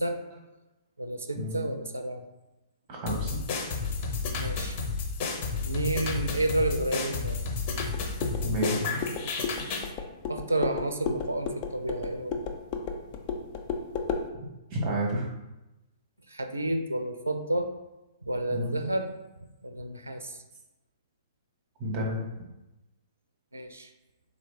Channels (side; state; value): both; inverted; correlation -0.57